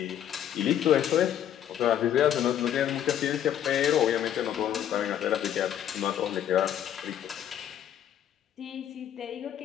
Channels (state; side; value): quieter; right; 10.3 dB